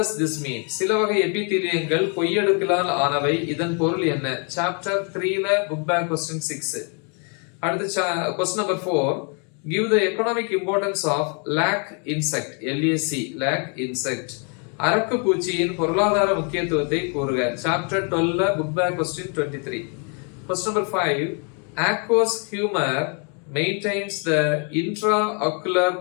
this mean? சில வகை எபிதீலியங்கள் பொய்யடுக்களால் ஆனவை. இதன் பொருள் என்ன? சாப்டர் 3ல புக் பேக் question 6. அடுத்து question number 4, give the economic importance of lac insect. LAC lac insect. அரக்கு பூச்சியின் பொருளாதார முக்கியத்துவத்தை கூறுக. சாப்டர் 12ல book back question 23. question number 5, aqueous humor maintains the intraocular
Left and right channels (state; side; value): quieter; right; 38.5 dB